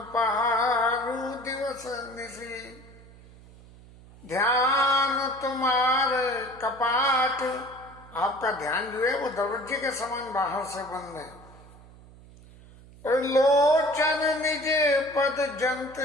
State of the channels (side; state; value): right; noise; hum, 22 dB below the sound